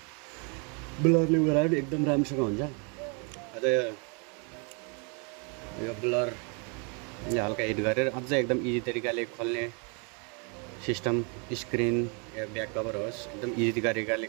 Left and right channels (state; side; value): quieter; left; 35.9 dB